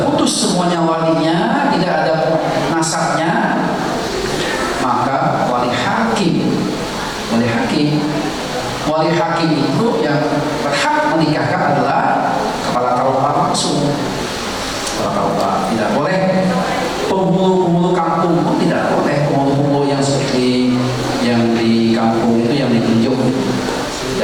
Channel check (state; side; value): identical; both; correlation 1.00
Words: putus semuanya walinya, tidak ada nasabnya, maka wali hakim itu yang berhak menikahkan adalah kepala KUA langsung. Kepala KUA tidak boleh, penghulu kampung pun tidak boleh, penghulu yang seperti yang di kampung itu yang ditunjuk